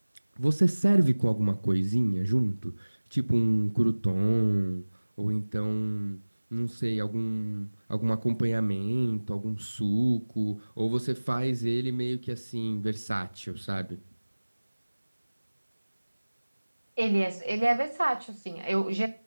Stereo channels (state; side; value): inverted; both; correlation -1.00